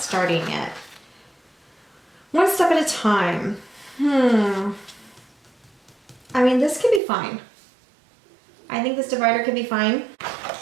yet. One step at a time. I mean, this could be fine. I think this divider could be fine.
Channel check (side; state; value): left; drops out; at 7.0 s